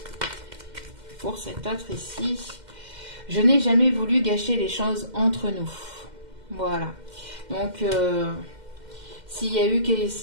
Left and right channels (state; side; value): late; left; 2.1 ms